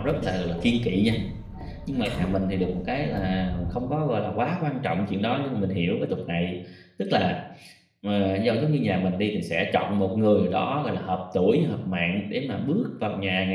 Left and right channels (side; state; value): both; identical; correlation 1.00